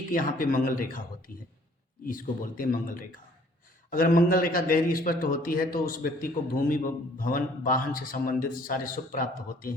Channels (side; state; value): both; normal; correlation 0.58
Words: यहाँ पे मंगल रेखा होती है, इसको बोलते हैं मंगल रेखा। अगर मंगल रेखा गहरी स्पष्ट होती है तो उस व्यक्ति को भूमि भवन वाहन से संबंधित सारे सुख प्राप्त होते